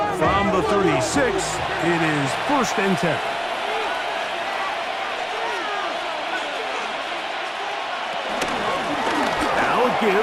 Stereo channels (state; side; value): identical; both; correlation 1.00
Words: from the 36, it is 1st and 10. Now a